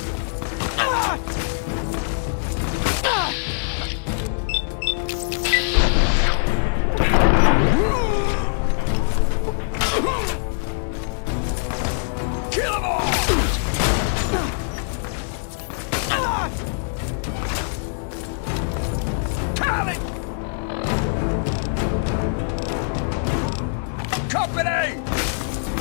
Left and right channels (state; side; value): silent; right; 64 dB below the other